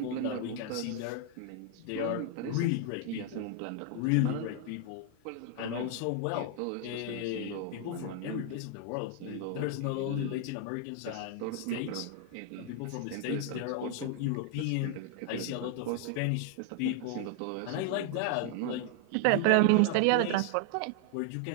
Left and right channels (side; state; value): both; different; correlation 0.00